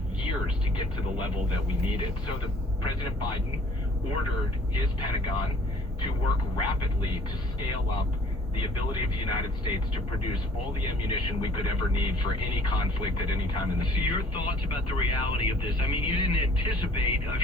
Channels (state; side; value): normal; both; correlation 0.55